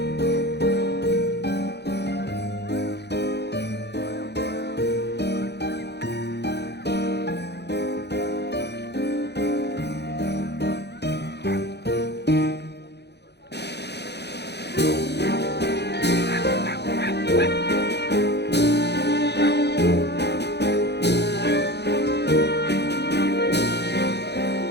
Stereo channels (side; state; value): right; late; 0.49 ms